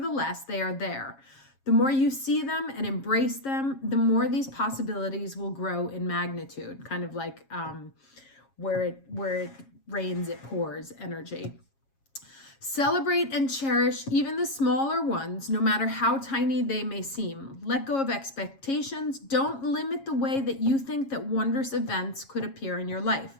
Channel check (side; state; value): right; late; 7.4 ms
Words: they are there. The more you see them and embrace them, the more these possibilities will grow in magnitude, kind of like where it rains, it pours energy. Celebrate and cherish even the smaller ones, no matter how tiny they may seem. Let go of expectations. Don't limit the way that you think that wondrous events could appear in your life.